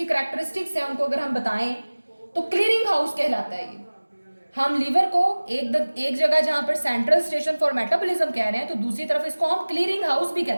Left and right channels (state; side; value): inverted; both; correlation -1.00